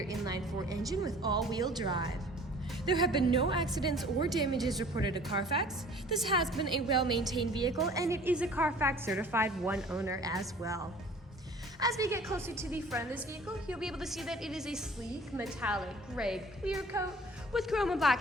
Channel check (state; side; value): normal; both; correlation 0.49